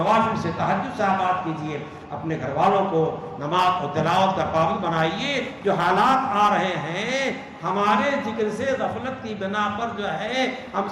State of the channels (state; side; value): identical; both; correlation 1.00